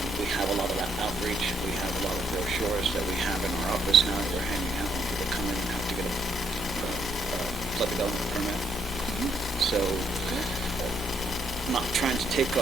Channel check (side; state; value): both; normal; correlation 0.72